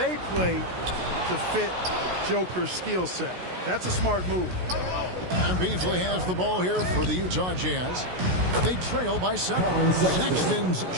play to fit Joker's skill set. That's a smart move. And Beasley has the ball here for the Utah Jazz. They trail by 7. Sexton's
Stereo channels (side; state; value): left; late; 16 ms